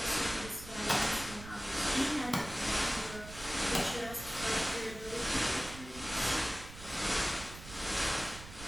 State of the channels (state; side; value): noise; right; rumble, 14 dB below the sound